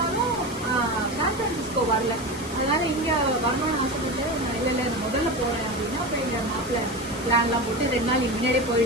சான் பிரான்சிஸ்கோ வரல. அதனால இங்கே வரணும்னு ஆசைப்பட்டு இல்லை முதல்ல போகிறேன் அப்படின்னா அப்போ எங்கள் மாப்பிள்ளை பிளான்லாம் போட்டு 2 நாள் முன்னாடியே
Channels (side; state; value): left; noise; hiss, 14 dB below the sound